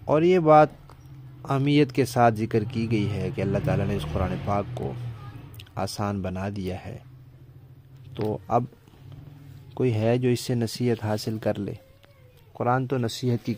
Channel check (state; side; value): identical; both; correlation 1.00